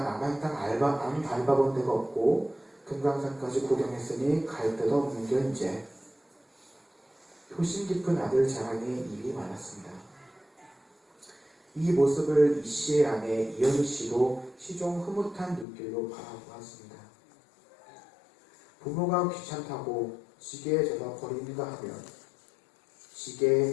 남한 땅 안 밟아본 데가 없고 금강산까지 구경했으니 갈 데도 없는 게 이제. 효심 깊은 아들 자랑에 입이 많았습니다. 이 모습을 이씨의 아내 이현희 씨도 시종 흐뭇한 눈길로 바라보았습니다. 부모가 귀찮다고 지게에 져서 버리는가 하면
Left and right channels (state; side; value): drops out; right; at 15.7 s